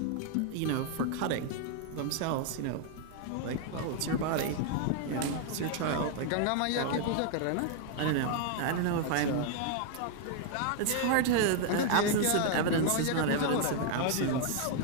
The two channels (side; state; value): both; different; correlation 0.00